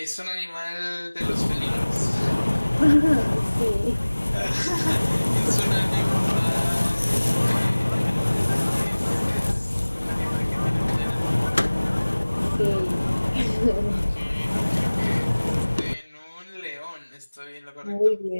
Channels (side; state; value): both; inverted; correlation -1.00